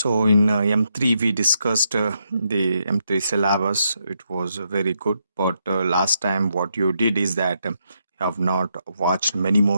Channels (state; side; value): inverted; both; correlation -0.79